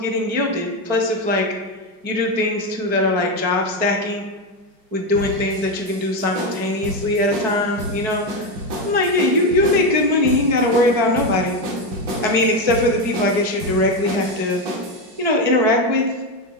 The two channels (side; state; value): left; late; 4.6 ms